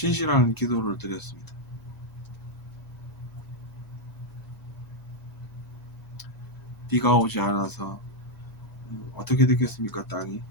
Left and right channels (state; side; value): late; right; 2.0 ms